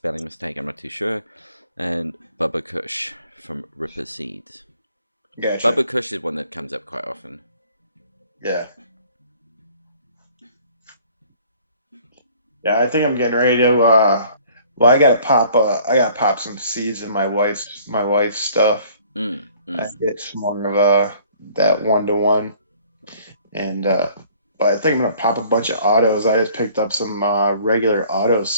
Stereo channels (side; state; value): both; inverted; correlation -0.56